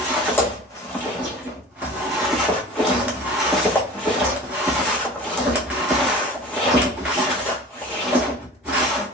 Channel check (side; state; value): both; normal; correlation 0.40